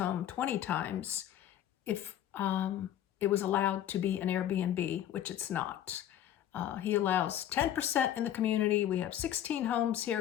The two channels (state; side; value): quieter; right; 11.3 dB